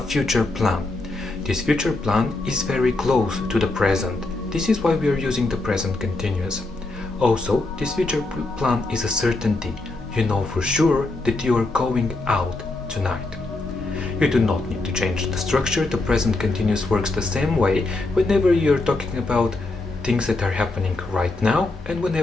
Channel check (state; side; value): quieter; right; 3.1 dB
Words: plan. This future plan is very close to the present. This is why we are using the present continuous. Also, this future plan is a certainty. You know for sure that you are going out tonight. You do not need to change the structure. The present continuous works the same way whenever you're talking about things that are happening right now and